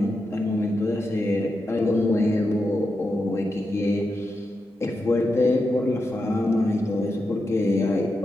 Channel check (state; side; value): normal; both; correlation 0.87